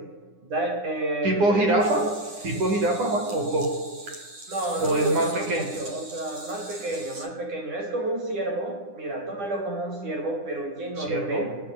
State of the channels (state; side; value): late; left; 9.9 ms